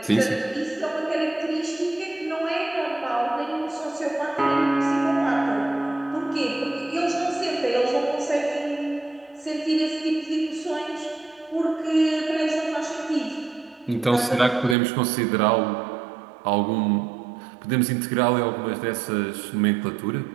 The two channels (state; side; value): drops out; left; at 14.8 s